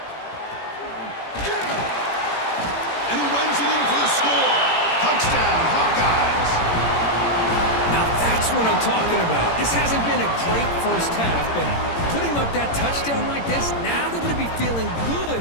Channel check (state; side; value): late; right; 18 ms